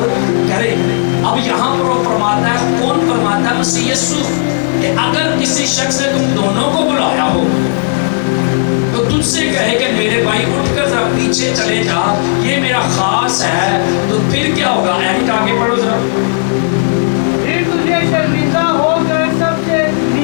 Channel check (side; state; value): right; silent; digital silence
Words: करें, अब यहाँ पर वो फरमाता है, कौन फरमाता है? मसीह यीशु, कि अगर किसी शख्स ने तुम दोनों को बुलाया हो तो तुझसे कहे कि मेरे भाई उठकर जरा पीछे चले जा, ये मेरा खास है, तो फिर क्या होगा? एनिट आगे पढ़ो जरा। फिर तुझे शर्मिंदा होकर सबसे